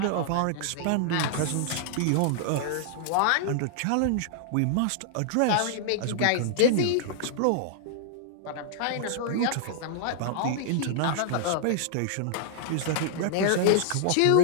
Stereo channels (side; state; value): both; different; correlation -0.01